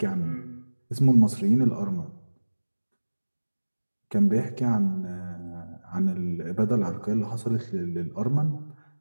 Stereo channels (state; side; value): inverted; both; correlation -1.00